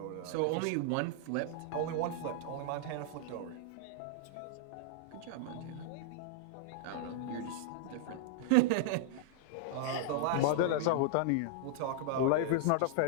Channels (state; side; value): different; both; correlation -0.01